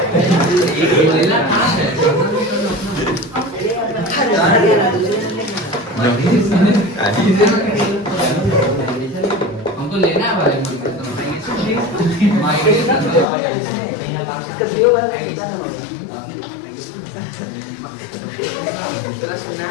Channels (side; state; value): right; drops out; at 13.2 s